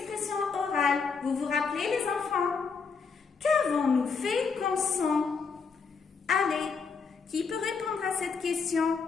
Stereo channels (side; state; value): right; quieter; 5.3 dB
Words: orale. Vous vous rappelez les enfants? Qu'avons-nous fait comme son? Allez, qui peut répondre à cette question?